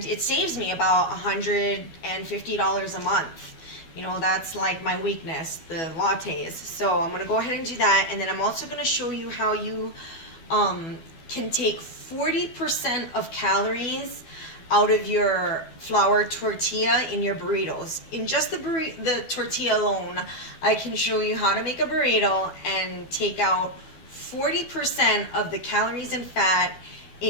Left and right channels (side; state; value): right; late; 12 ms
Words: it saves me about $150 a month. You know, that's like my weakness, the lattes. So I'm going to go ahead and do that, and then I'm also going to show you how you can take 40% of calories out of your flour tortilla in your burritos. In just the tortilla alone, I can show you how to make a burrito and take out 40% of the calories and fat